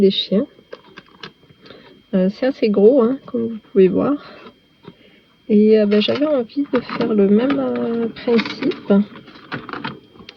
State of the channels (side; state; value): both; identical; correlation 1.00